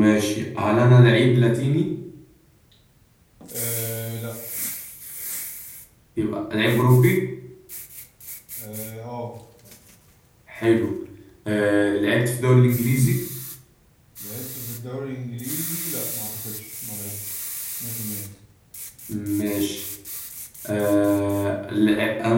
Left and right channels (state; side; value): identical; both; correlation 1.00